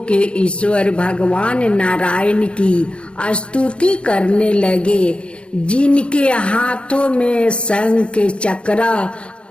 के ईश्वर भगवान नारायण की स्तुति करने लगे, जिनके हाथों में शंख चक्र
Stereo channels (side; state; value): right; late; 0.057 ms